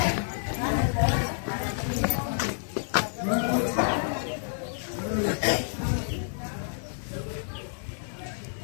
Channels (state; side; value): silent; right; digital silence